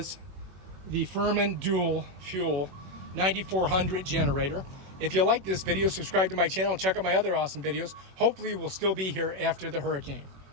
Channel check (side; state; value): left; late; 21 ms